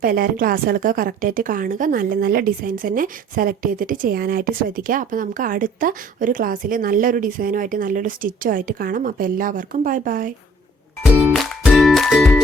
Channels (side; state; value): both; normal; correlation 0.56